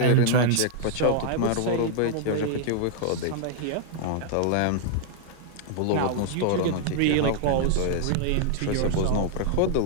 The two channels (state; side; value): different; both; correlation -0.01